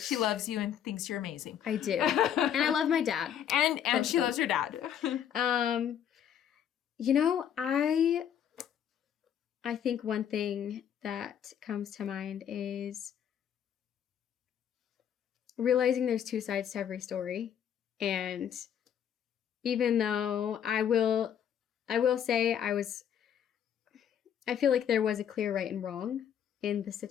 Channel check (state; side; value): quieter; right; 9.2 dB